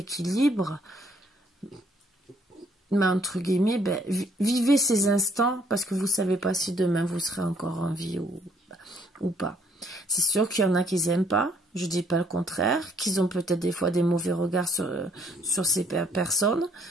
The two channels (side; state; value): both; normal; correlation 0.65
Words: mais entre guillemets, vivez ces instants parce que vous ne savez pas si demain vous serez encore en vie ou pas. C'est sûr qu'il y en a qui n'aiment pas, je ne dis pas le contraire, qu'ils ont peut-être des fois des mauvais regards sur ces personnes,